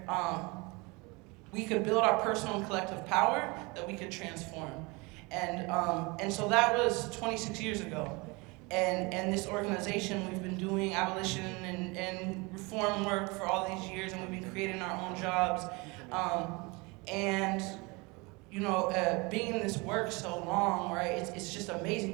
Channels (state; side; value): quieter; left; 26.7 dB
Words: we could build our personal and collective power, that we could transform. And so that was 26 years ago. And this organization, we've been doing abolition and reform work for all these years, and we've been creating our own jobs. And you know, being in this work so long, right, it's just